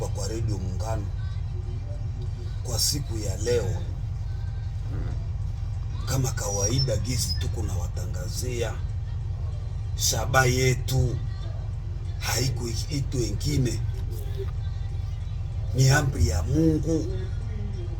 kwa Radio Muungano kwa siku ya leo. Kama kawaida gizi tuko na watangazia shaba yetu, haiko itu wengine, ni amri ya Mungu,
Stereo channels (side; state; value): both; identical; correlation 1.00